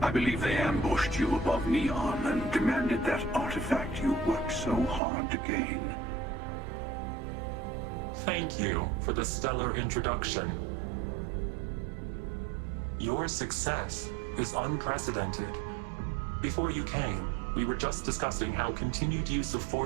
believe they ambushed you above Neon and demanded that artifact you worked so hard to gain. Thank you for the stellar introduction. Your success is unprecedented. Before you came, we were just discussing how continued use of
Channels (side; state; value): left; drops out; at 5.0 s